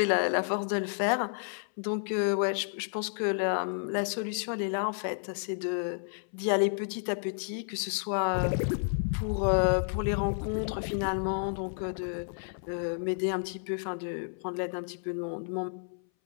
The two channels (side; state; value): right; silent; 57 dB below the other